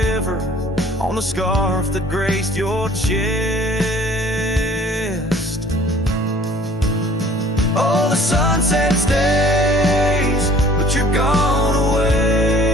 on the scarf that graced your chest. Oh, the sunset stays, but you're gone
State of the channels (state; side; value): normal; both; correlation 0.53